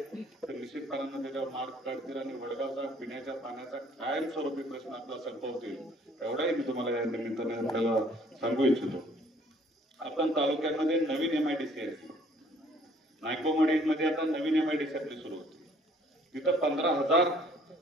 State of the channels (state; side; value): normal; both; correlation 0.59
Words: तर निश्चितपणानं त्याच्यावर मार्क काढतील आणि वडगावचा पिण्याच्या पाण्याचा कायमस्वरूपी प्रश्न आपला संपवतील एवढाही मी तुम्हाला या निमित्ताने आपल्याला सांगू इच्छितो. आपण तालुक्यामध्ये नवीन MIDC आहे. नायकोमडीमध्ये आता नवीन MIDC आपली सुरू होती. तिथं 15,000